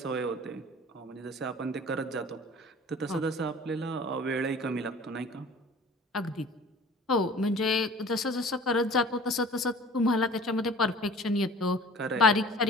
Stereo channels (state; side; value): normal; both; correlation 0.45